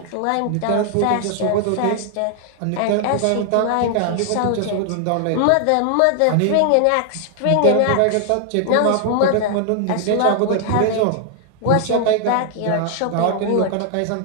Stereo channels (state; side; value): different; both; correlation 0.00